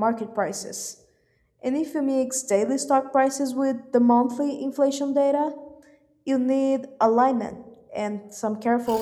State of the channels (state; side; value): identical; both; correlation 1.00